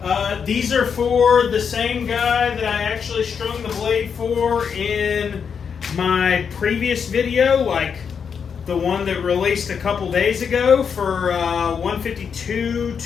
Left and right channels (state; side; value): quieter; right; 6.7 dB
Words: These are for the same guy that I actually strung the blade for in my previous video, like the one that released a couple days ago for 152